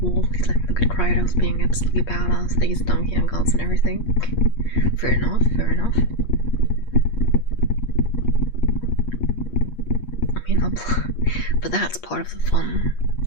War, please let me look at Kratos being absolutely badass, these donkey and gods and everything. Fair enough, fair enough. I mean, but that's part of the fun.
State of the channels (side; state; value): right; late; 8.5 ms